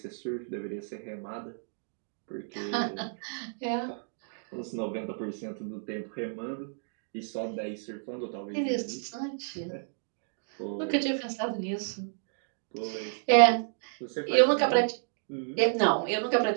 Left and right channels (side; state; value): left; silent; digital silence